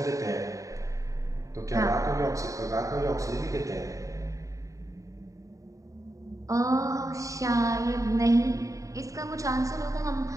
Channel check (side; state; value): left; late; 0.16 ms